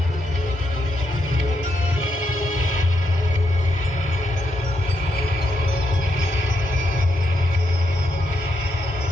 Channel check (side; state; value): both; normal; correlation 0.80